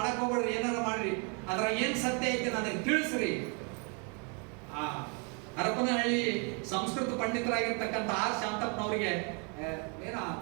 ಹೋಗ್ಬೇಡ್ರಿ, ಏನಾರ ಮಾಡ್ರಿ, ಅದ್ರ ಏನ್ ಸತ್ಯ ಐತಿ ನನಗೆ ತಿಳಿಸ್ರಿ. ಆ ಹರಪನಹಳ್ಳಿ ಸಂಸ್ಕೃತ ಪಂಡಿತರಾಗಿರ್ತಕ್ಕಂಥ ಆರ್ ಶಾಂತಪ್ಪನವರಿಗೆ ಏನೋ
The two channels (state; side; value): quieter; left; 35.8 dB